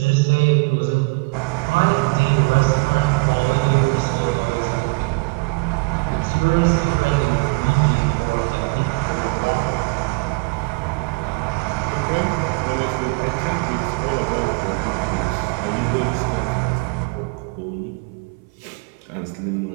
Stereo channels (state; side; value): quieter; left; 29.7 dB